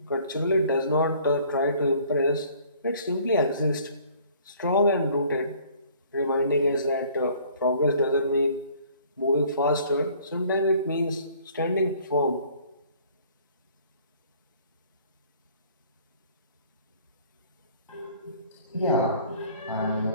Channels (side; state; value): both; inverted; correlation -0.56